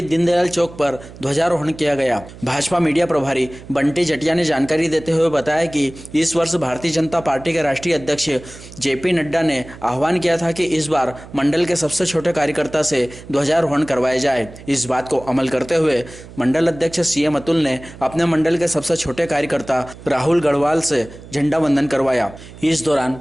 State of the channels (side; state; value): right; noise; hum, 17 dB below the sound